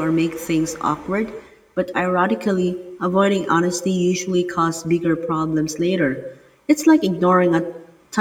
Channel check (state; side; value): identical; both; correlation 1.00